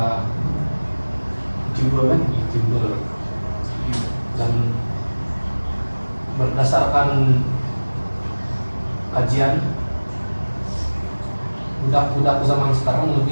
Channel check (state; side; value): inverted; both; correlation -1.00